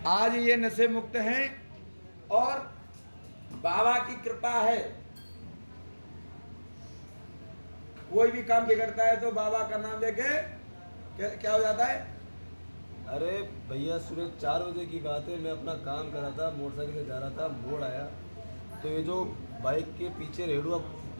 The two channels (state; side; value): inverted; both; correlation -1.00